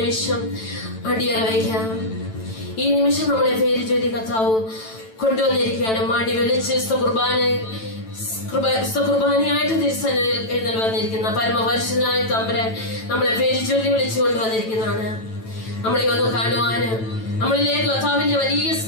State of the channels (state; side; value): late; right; 9.1 ms